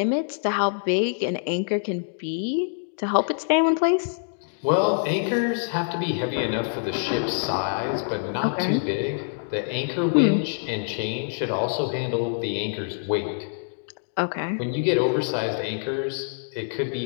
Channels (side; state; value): right; silent; digital silence